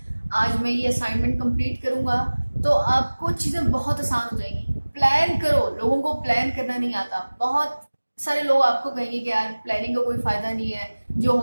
आज मैं ये असाइनमेंट कंप्लीट करूंगा, तो आपको चीज़ें बहुत आसान हो जाएंगी। प्लान करो। लोगों को प्लान करना नहीं आता। बहुत सारे लोग आपको कहेंगे कि यार प्लानिंग का कोई फायदा नहीं है, जो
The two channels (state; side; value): inverted; both; correlation -1.00